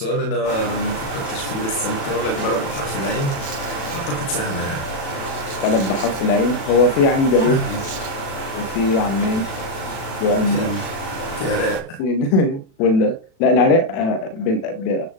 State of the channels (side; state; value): right; late; 36 ms